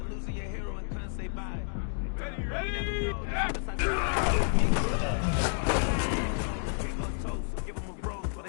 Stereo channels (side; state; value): right; silent; digital silence